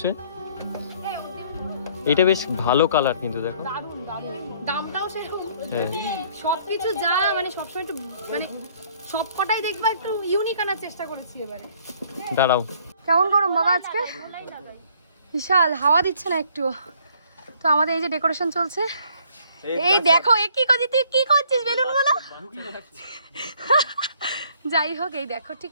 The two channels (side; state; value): both; inverted; correlation -0.62